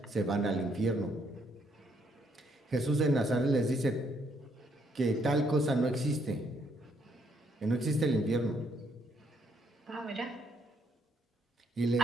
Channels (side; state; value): both; normal; correlation 0.71